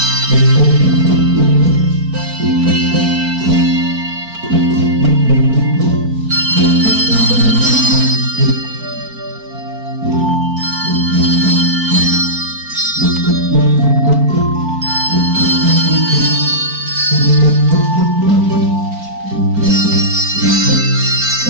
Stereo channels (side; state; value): left; late; 4.4 ms